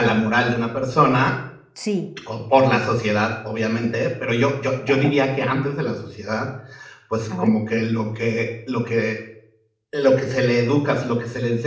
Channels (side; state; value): both; identical; correlation 1.00